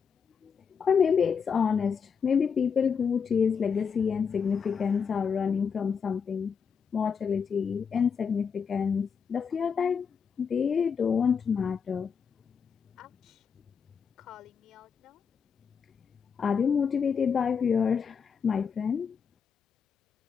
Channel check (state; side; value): quieter; right; 6.4 dB